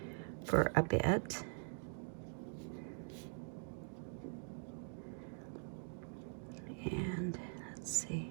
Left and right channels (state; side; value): silent; left; digital silence